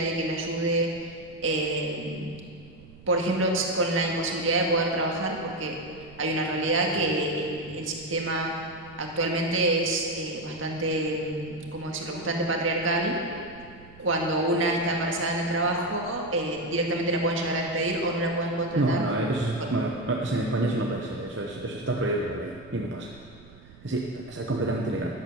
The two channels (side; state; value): right; noise; rumble, 21 dB below the sound